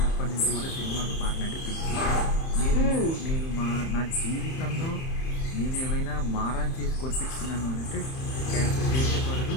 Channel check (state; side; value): late; right; 31 ms